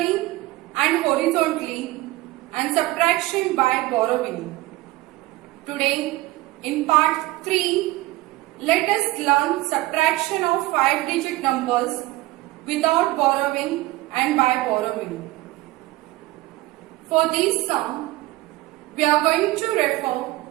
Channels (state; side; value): quieter; left; 18.7 dB